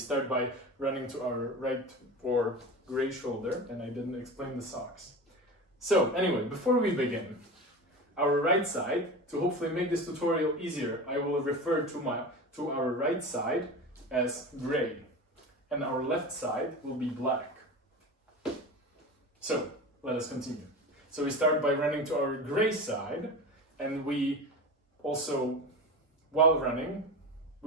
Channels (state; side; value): normal; both; correlation 0.29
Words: by running to our right or gray shoulder, and I didn't explain the socks. So anyway, before we begin, our right side, to hopefully make this tutorial easier, I will refer to our right side as gray, and our left side will be black. So let us continue. So we start by running to our gray side, and we also, while running,